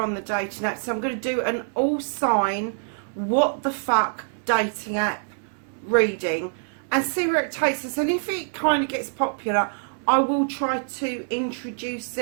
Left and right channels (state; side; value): silent; left; digital silence